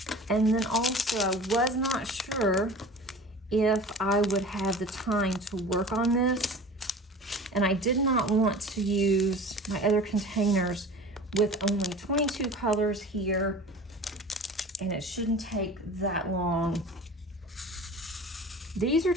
And then also I was not sure if I would have the time to work on this. And I did not want to use my other containers with only 22 colors here. And it shouldn't take that long. These are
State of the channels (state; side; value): normal; both; correlation 0.39